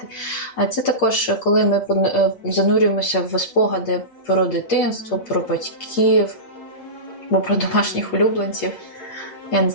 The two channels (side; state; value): right; late; 8.5 ms